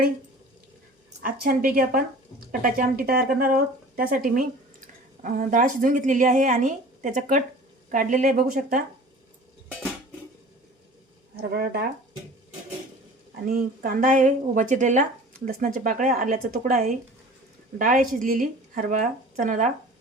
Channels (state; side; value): normal; both; correlation 0.43